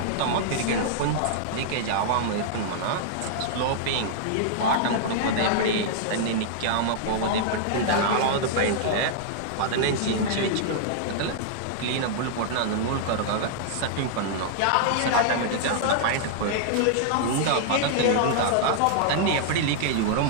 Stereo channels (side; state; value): both; different; correlation -0.01